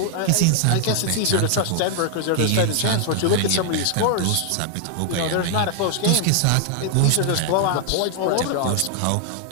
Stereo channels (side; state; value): both; different; correlation 0.00